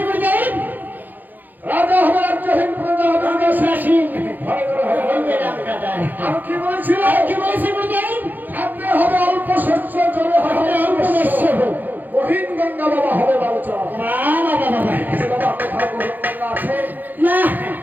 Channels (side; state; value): left; late; 0.085 ms